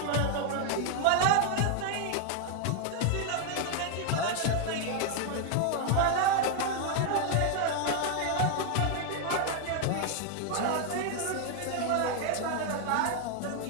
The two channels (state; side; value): different; both; correlation 0.00